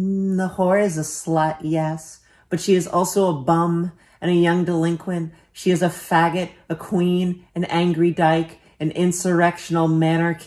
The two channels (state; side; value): identical; both; correlation 1.00